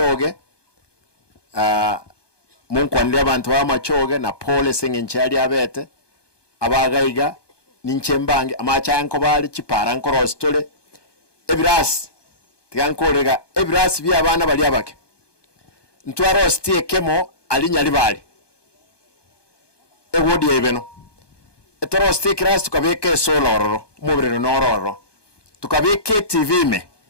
munkwandira abantu ba machoge na pole sengenchali abete abagaiga ninchembange amachanko bali chipara nkoro stole ebras tigankorega ebras bya abana bali abake ntwaro stie kemo alinyali bali ewodi ebeno etoro stikras tukabeke soloro mubirero nororo tukabeke TV me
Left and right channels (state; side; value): late; right; 1.2 ms